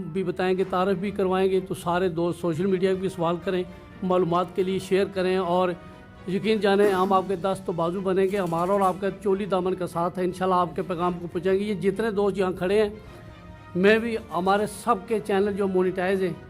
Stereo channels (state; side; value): identical; both; correlation 1.00